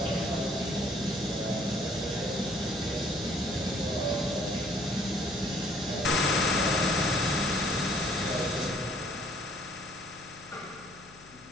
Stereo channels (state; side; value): noise; left; hum, 24 dB below the sound